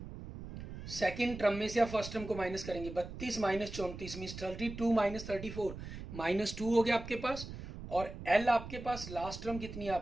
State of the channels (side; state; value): right; noise; rumble, 11 dB below the sound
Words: सेकेंड टर्म में से आप फर्स्ट टर्म को माइनस करेंगे, 32 माइनस 34 मीन्स 32 माइनस 34 -2 हो गया आपके पास, और एल आपके पास लास्ट टर्म कितनी है